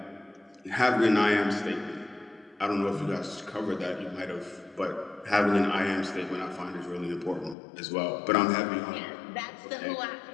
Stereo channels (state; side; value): drops out; right; at 7.6 s